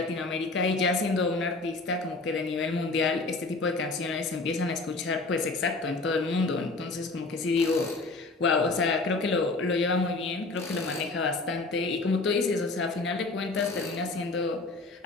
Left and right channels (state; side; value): quieter; right; 3.4 dB